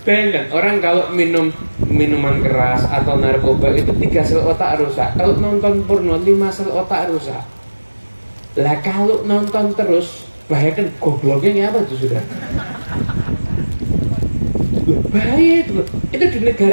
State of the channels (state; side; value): inverted; both; correlation -1.00